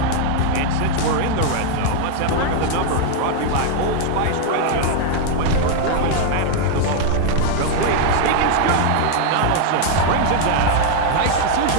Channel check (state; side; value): different; both; correlation 0.00